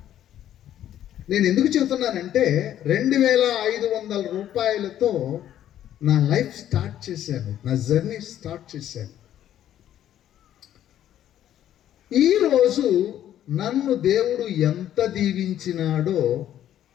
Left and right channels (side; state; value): right; quieter; 11.4 dB